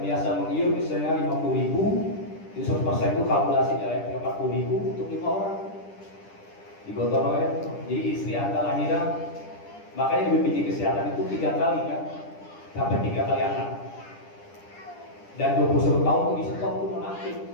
biasa mengiur misalnya 50.000, jadi 100% itu kalkulasinya ya 40.000 untuk 5 orang digotong royong. Jadi istri Anda lahiran, makanya di BPJS Kesehatan itu 3 kali kan, sampai 3 kali anak. Dan 21 tahun itu di-stop itu nonaktif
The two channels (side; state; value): right; late; 10 ms